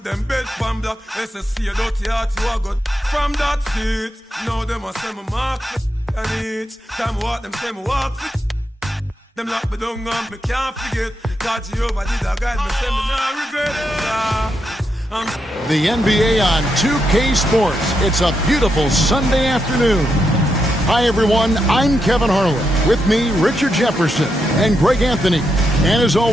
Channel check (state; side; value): normal; both; correlation 0.83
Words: them bed pan black. SSC a dirty heart you a got from that seat. Now them a say me mark and each time I walk them say me walk fit. Them lock me down and me can't forget. God Jehovah did a guide me, say me not regret it. The NBA on 2K Sports. It's a beautiful Sunday afternoon. Hi everyone, I'm Kevin Harlan. With me, Richard Jefferson and Greg Anthony. And as